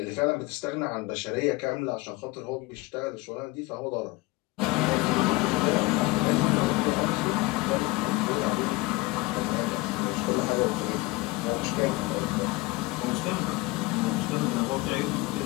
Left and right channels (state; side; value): quieter; right; 21.9 dB